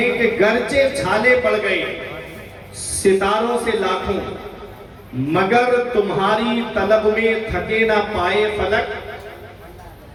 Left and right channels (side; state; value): both; identical; correlation 1.00